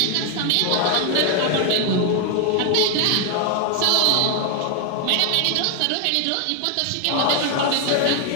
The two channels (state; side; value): different; both; correlation 0.01